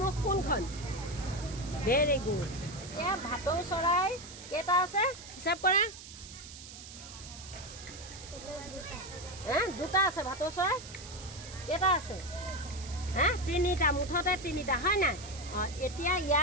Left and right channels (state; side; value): noise; right; hiss, 14 dB below the sound